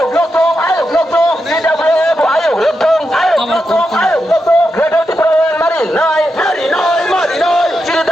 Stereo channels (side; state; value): both; normal; correlation 0.86